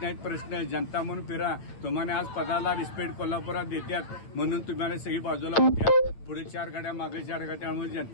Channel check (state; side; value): late; right; 8.6 ms